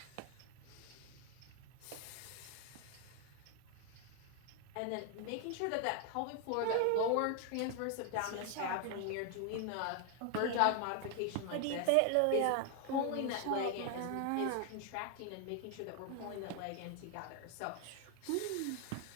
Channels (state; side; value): different; both; correlation 0.00